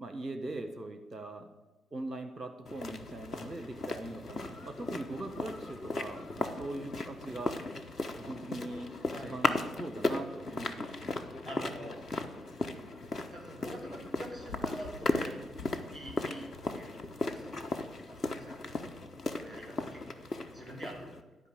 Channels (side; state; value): both; normal; correlation 0.83